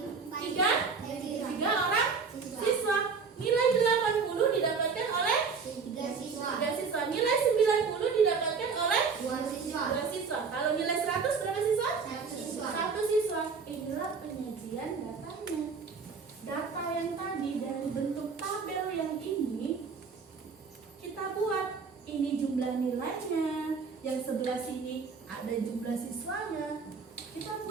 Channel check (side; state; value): left; quieter; 5.2 dB